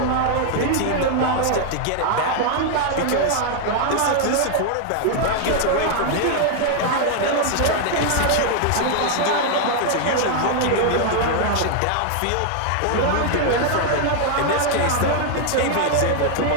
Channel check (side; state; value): both; different; correlation 0.00